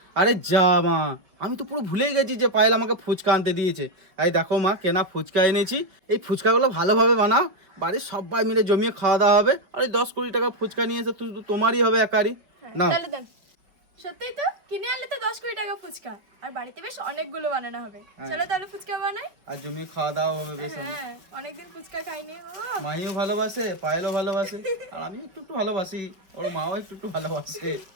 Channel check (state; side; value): late; left; 5.4 ms